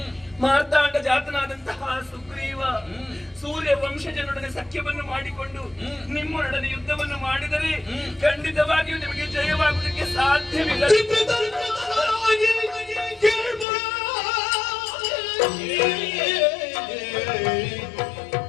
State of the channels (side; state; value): right; drops out; at 13.7 s